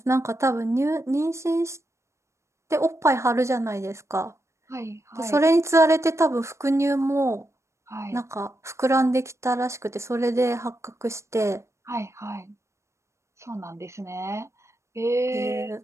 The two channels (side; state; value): left; late; 0.14 ms